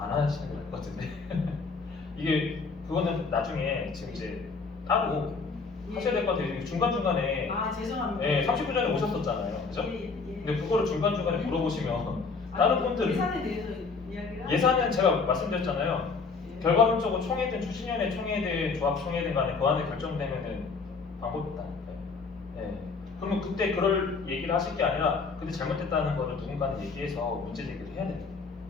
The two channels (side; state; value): right; quieter; 4.6 dB